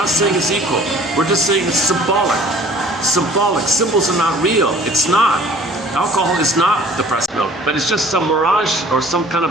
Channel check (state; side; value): normal; both; correlation 0.51